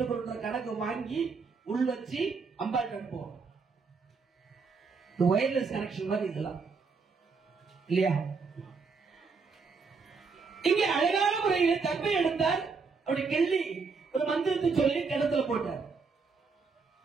கணக்கு வாங்கி உள் வச்சு அம்பாள் அனுப்புவோம். வயர்லெஸ் கனெக்ஷன் மாதிரி இதெல்லாம் இல்லையா? இங்க அழகான முறையில் தர்பை எடுத்தார். அப்படி கிள்ளி ஒரு மந்திரத்தை சொல்லி கிணத்துல போட்டார்.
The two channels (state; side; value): quieter; left; 4.8 dB